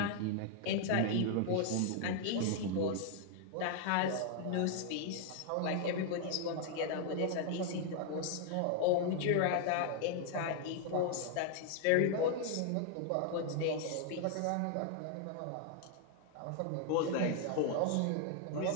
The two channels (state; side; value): different; both; correlation 0.00